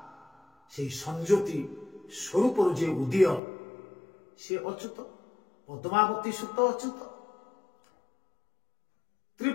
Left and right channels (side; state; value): right; drops out; at 3.4 s